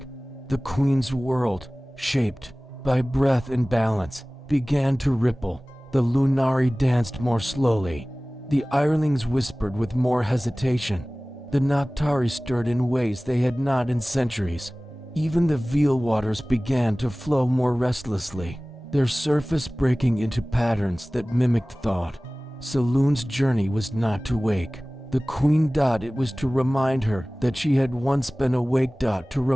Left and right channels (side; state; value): both; normal; correlation 0.98